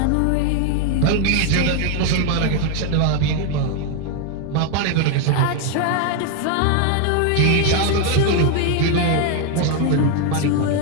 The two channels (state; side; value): different; both; correlation 0.01